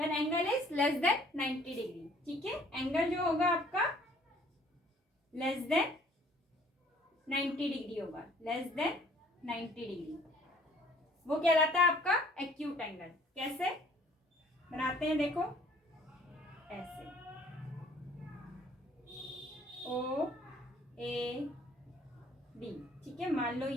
angle is less than 90 degree. ठीक है, एंगल जो होगा आपका लेस देन 90 डिग्री होगा, लेस देन 90 डिग्री, वो कहलाता है आपका एक्यूट एंगल। कैसे बनाते हैं देखो, ऐसे ओ ए बी। ठीक है, मान लो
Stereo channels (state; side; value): normal; both; correlation 0.57